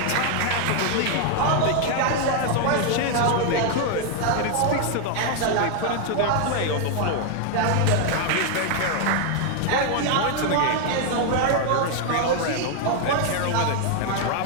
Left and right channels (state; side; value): different; both; correlation 0.00